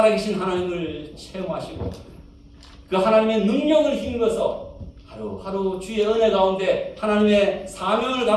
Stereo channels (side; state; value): both; identical; correlation 1.00